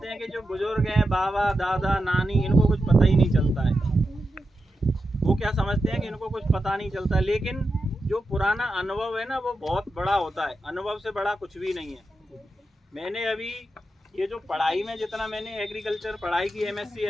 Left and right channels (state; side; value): normal; both; correlation 0.89